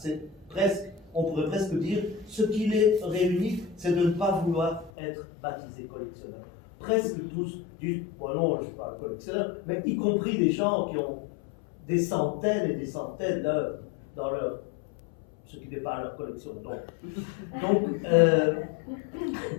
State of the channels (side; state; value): right; drops out; at 4.9 s